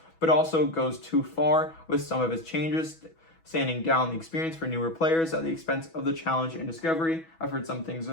but also goes too far with some of its changes, sanding down the experience for newer players at the expense of the challenge and discovery. I've heard some things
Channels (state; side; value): late; right; 6.1 ms